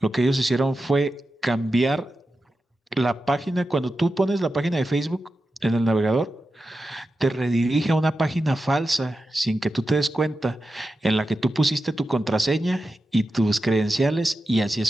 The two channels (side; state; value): both; normal; correlation 0.91